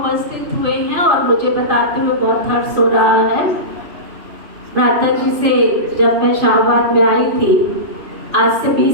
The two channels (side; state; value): left; late; 2.5 ms